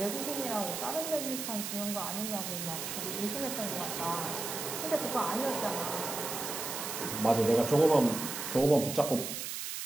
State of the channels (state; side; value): noise; right; hiss, 5 dB below the sound